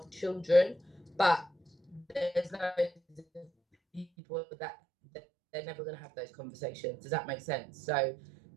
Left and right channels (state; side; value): drops out; left; at 4.0 s